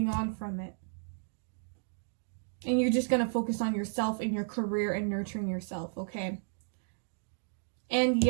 on from it. And you're just gonna focus on yourself and your career and nurturing yourself, okay? And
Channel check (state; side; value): silent; left; digital silence